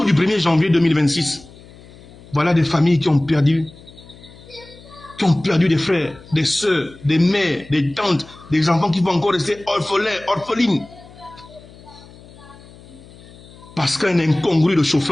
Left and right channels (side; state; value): left; noise; hum, 21 dB below the sound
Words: du 1er janvier 2026, voilà des familles qui ont perdu des frères, des sœurs, des mères, des tantes, des enfants qui vont encore rester orphelines. Parce qu'un incongru de